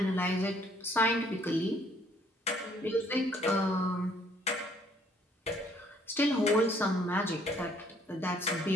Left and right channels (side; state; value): both; normal; correlation 0.63